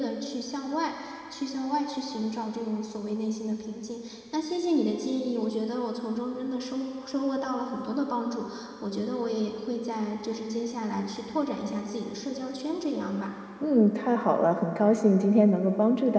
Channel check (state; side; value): identical; both; correlation 1.00